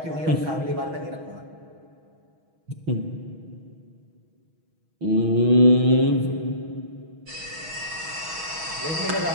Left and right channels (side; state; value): left; late; 6.3 ms